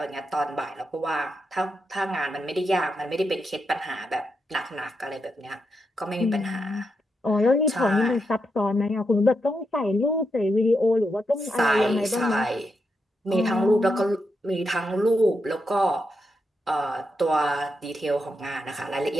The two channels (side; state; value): both; normal; correlation 0.84